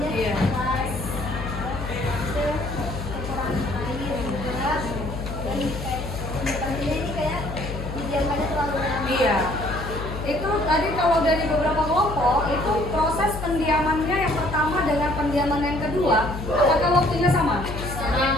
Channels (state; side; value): noise; left; hum, 7 dB below the sound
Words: Iya. keras. Itu kekurangan air juga. Dan kayak pembuatannya ini kayak didiamkannya terlalu lama. Iya. Itu tadi kalau dari beberapa kelompok itu proses pendiamannya yang pertama dengan pendiaman yang kedua, apakah waktunya sama?